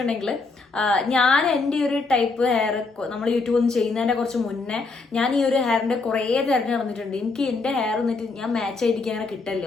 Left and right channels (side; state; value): right; quieter; 4.0 dB